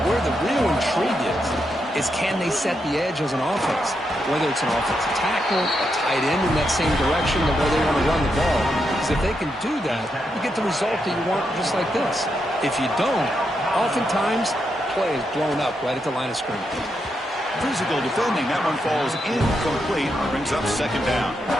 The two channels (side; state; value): both; normal; correlation 0.83